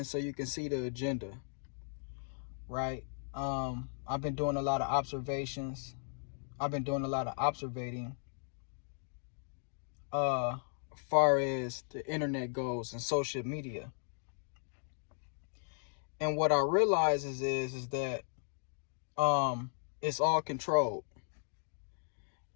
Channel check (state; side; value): silent; right; digital silence